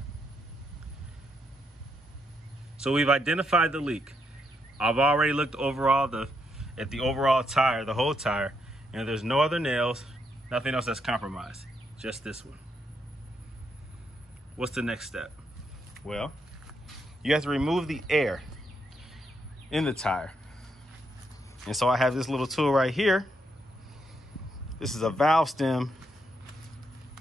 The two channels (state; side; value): normal; both; correlation 0.78